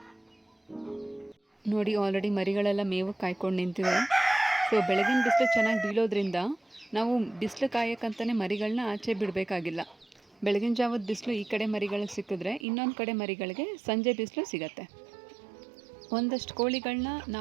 ನೋಡಿ, ಆಲ್ರೆಡಿ ಮರಿಗಳೆಲ್ಲ ಮೇವು ಕಾಯ್ಕೊಂಡು ನಿಂತಿವೆ. ಸೊ ಬೆಳಗಿನ ಬಿಸಿಲು ಚೆನ್ನಾಗಿ ಬೀಳೋದ್ರಿಂದ ನಾವು ಬಿಸಿಲು ಕಾಯೋಕ್ಕಂತಲೇ ಮರಿಗಳನ್ನ ಆಚೆ ಬಿಡಬೇಕಾಗಿಲ್ಲ. ಬೆಳಗಿನ ಜಾವದ ಬಿಸಿಲು ಈ ಕಡೆ ಮರಿಗಳಿಗೆ ಸಿಕ್ಕಿದ್ರೆ ಇನ್ನೊಂದು ಕಡೆ ಮರಿಗಳಿಗೆ ಸಂಜೆ ಬಿಸಿಲು ಸಿಗತ್ತೆ. ಒಂದಷ್ಟು ಕೋಳಿಗಳನ್ನ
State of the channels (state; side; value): drops out; left; at 12.7 s